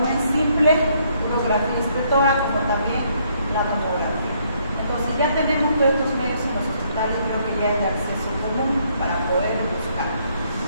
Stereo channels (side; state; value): both; inverted; correlation -0.69